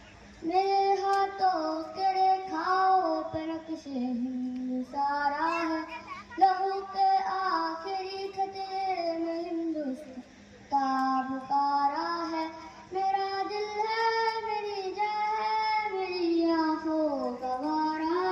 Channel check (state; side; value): identical; both; correlation 1.00